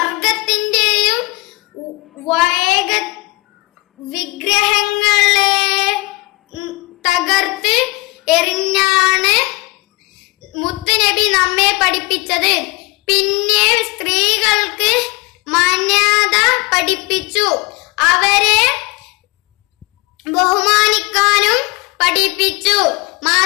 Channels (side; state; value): right; quieter; 24.6 dB